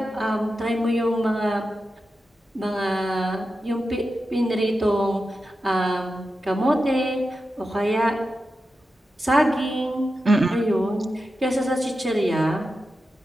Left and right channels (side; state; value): both; normal; correlation 0.91